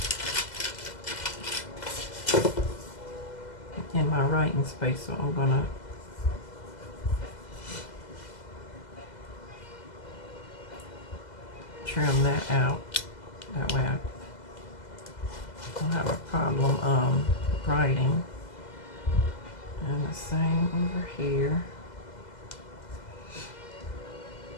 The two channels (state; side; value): late; right; 2.0 ms